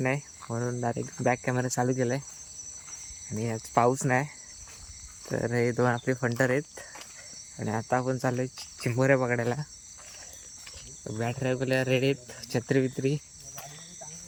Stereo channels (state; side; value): identical; both; correlation 1.00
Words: नाही म्हणून डायरेक्ट बॅक कॅमेरा चालू केला आहे. आणि आज पाऊस नाही तर हे दोन आपले फंटर आहेत आणि आता आपण चाललो आहे चिंबोऱ्या पकडायला. बॅटऱ्या वगैरे रेडी आहेत, छत्री बित्री